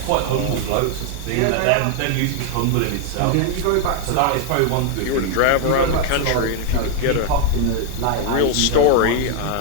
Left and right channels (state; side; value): different; both; correlation 0.00